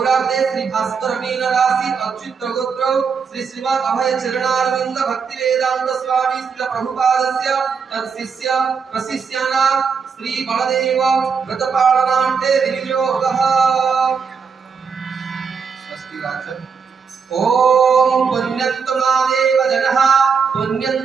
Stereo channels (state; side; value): quieter; left; 5.9 dB